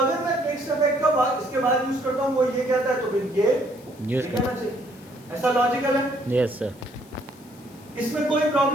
मैं फिक्स अफेक्ट का बाद इसके बाद यूज करता हूँ वो ये कहता है तो फिर ये यूज कहना चाहिए। ऐसा लॉजिकल है। Yes sir. इसमें कोई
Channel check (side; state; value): left; noise; hiss, 26 dB below the sound